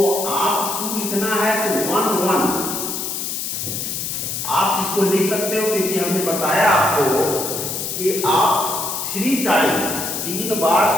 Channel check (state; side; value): noise; left; hiss, 4 dB below the sound